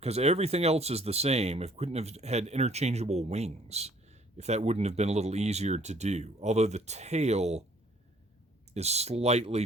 everything else is the same. If we couldn't have had interchangeable wings, if that wouldn't have been a little easier to do. Although the tail is slightly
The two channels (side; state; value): both; normal; correlation 0.59